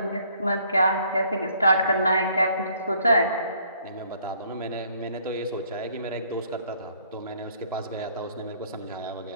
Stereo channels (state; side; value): inverted; both; correlation -0.63